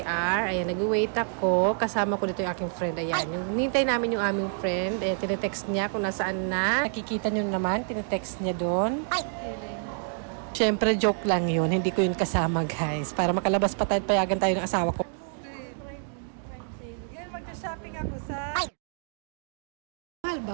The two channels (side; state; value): left; silent; digital silence